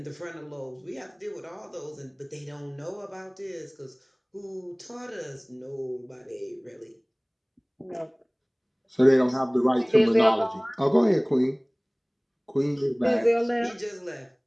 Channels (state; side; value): identical; both; correlation 1.00